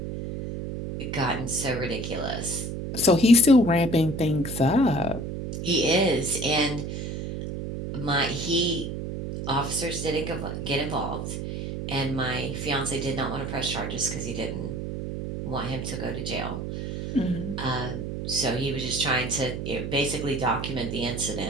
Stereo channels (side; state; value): right; noise; hum, 5 dB below the sound